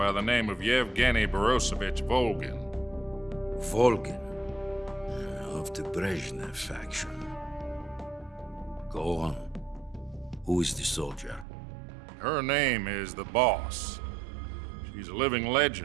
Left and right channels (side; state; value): left; drops out; at 11.5 s